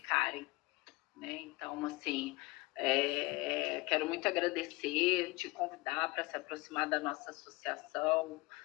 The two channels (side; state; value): right; quieter; 23.3 dB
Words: né? Então, assim, quero muito agradecer, te convidar para se aproximar da nossa associação,